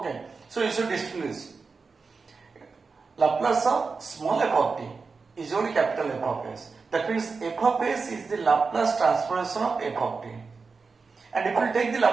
so you should distinguish. Laplace of small f of t is only capital F of s. That means f of s is the Laplace transformation of f of t. And if we take the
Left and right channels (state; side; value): quieter; left; 4.6 dB